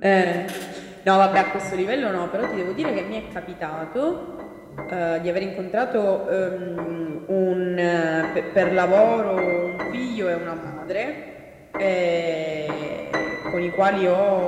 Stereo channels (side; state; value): both; identical; correlation 1.00